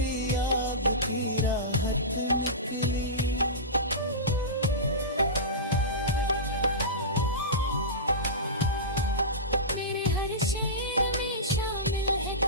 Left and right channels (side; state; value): both; normal; correlation -0.18